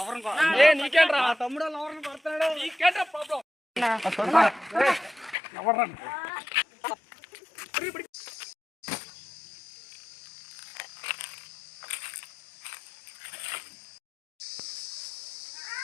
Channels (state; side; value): drops out; right; at 5.4 s